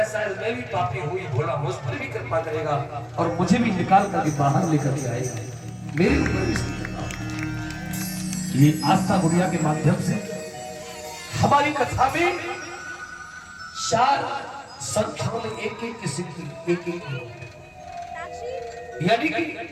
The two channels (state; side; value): identical; both; correlation 1.00